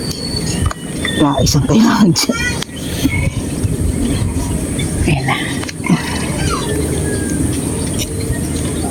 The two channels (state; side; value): identical; both; correlation 1.00